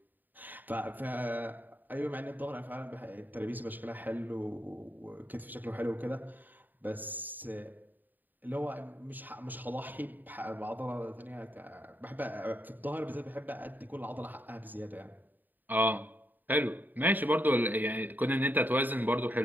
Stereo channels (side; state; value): left; late; 0.088 ms